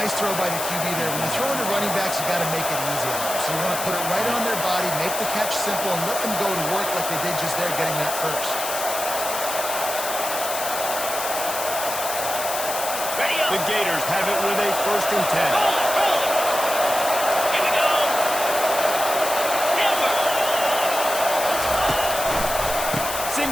throw by the QB there. When you're throwing to running backs, you got to make it easy on them. So you want to put it right on their body, make the catch simple, and let them go to work like they did just there, getting that first. The Gators have it with a 1st and 10.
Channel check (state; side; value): noise; left; hiss, 5 dB below the sound